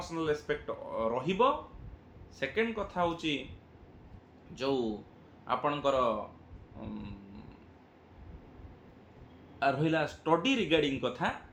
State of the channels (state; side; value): identical; both; correlation 1.00